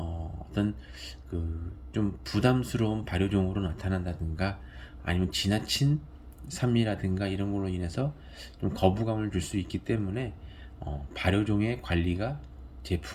그 좀 부담스러운 발효종으로 나타난다든가 아니면 지나친 산미라든가 이런 걸로 인해서 좀 거부감을 줄 수 있기 때문에 발효종의 관리가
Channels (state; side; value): identical; both; correlation 1.00